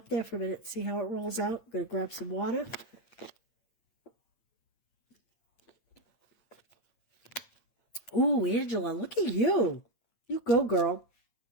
there for a minute, see how it rolls out. I'm going to grab some water. Ooh, Angela, look at you. You go, girl.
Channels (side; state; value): right; late; 8.8 ms